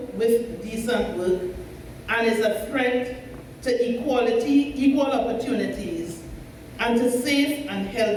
with decent work, and is a threat to equality, equal opportunities, and to safe and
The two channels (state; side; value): identical; both; correlation 1.00